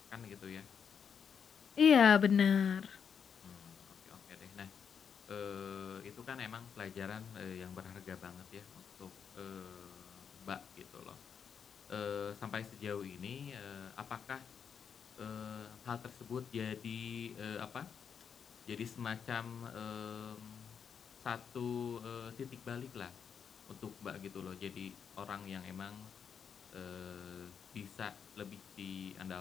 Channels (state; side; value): quieter; right; 7.1 dB